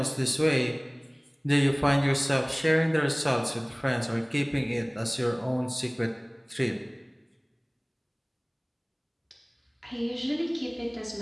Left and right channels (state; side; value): identical; both; correlation 1.00